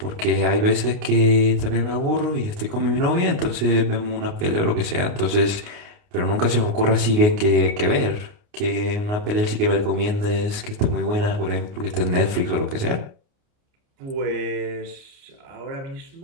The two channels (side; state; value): left; late; 29 ms